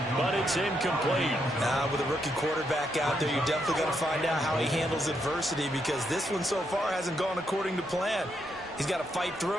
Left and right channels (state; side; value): normal; both; correlation 0.79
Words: but it's incomplete. With a rookie quarterback out there, you're definitely going to find out how he handles adversity, because this one so far hasn't gone according to plan. He's got to fight